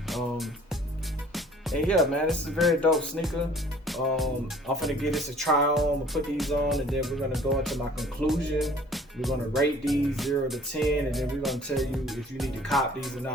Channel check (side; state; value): both; normal; correlation 0.52